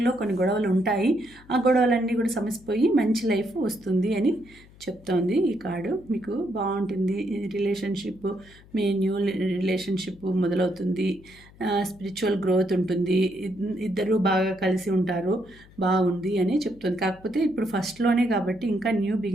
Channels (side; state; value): left; noise; hum, 24 dB below the sound